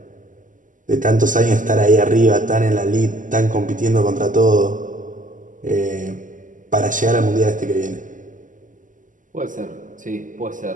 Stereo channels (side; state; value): left; late; 0.38 ms